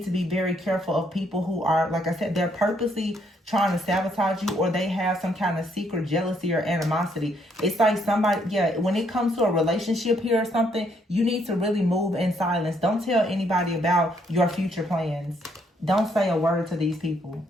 to be very careful of people who are, like I said, they're purposely trying to sabotage you, or they have some kind of secret jealousy or animosity. It's like somebody, yeah, when it comes to a relationship here or something, you need to really move in silence. Don't tell anybody about your future plans. Don't say a word to these people.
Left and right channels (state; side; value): normal; both; correlation 0.71